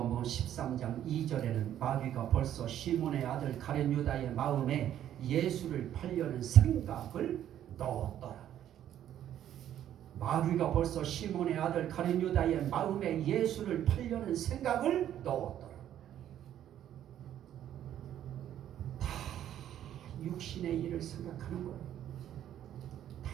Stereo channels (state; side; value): quieter; left; 11.1 dB